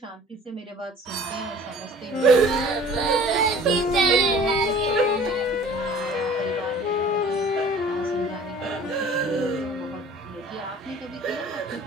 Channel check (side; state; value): both; normal; correlation 0.48